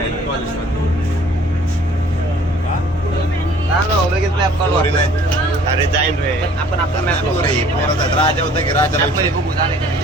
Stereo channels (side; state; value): both; normal; correlation 0.54